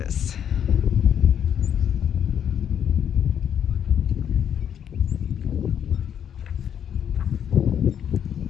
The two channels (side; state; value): right; quieter; 8.9 dB